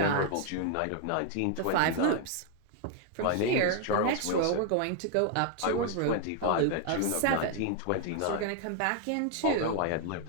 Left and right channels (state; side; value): different; both; correlation 0.00